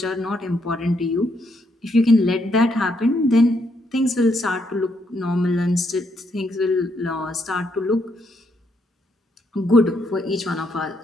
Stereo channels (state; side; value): normal; both; correlation 0.75